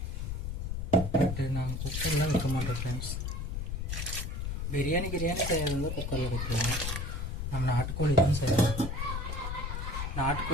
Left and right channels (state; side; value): noise; left; rumble, 3 dB below the sound